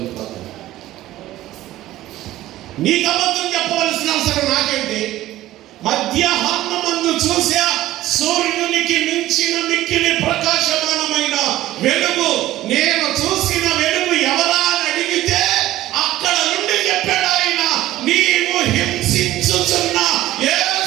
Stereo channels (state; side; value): quieter; left; 15.1 dB